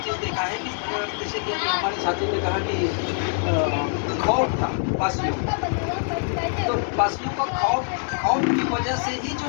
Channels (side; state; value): right; silent; 56 dB below the other